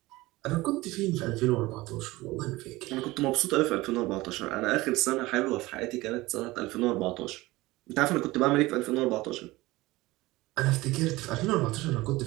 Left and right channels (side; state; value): left; quieter; 19.8 dB